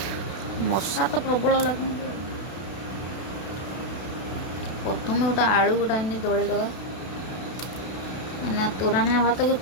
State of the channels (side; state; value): right; late; 32 ms